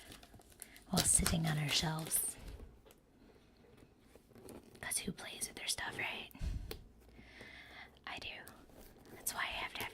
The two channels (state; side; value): identical; both; correlation 1.00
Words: while sitting on our shelves. Because who plays with their stuff, right? I do. That's why I have to